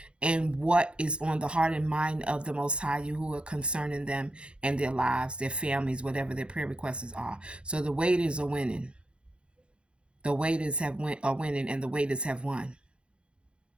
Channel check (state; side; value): late; left; 0.057 ms